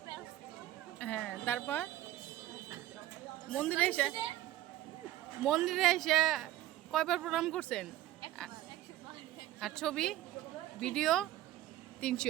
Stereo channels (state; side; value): quieter; left; 14.2 dB